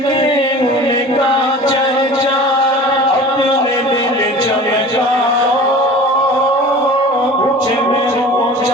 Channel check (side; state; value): both; normal; correlation 0.40